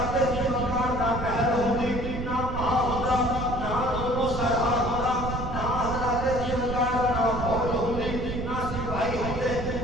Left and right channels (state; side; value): noise; right; rumble, 5 dB below the sound